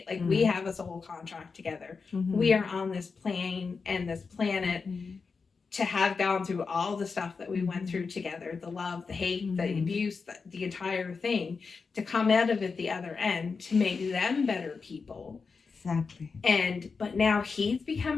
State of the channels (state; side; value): quieter; right; 4.9 dB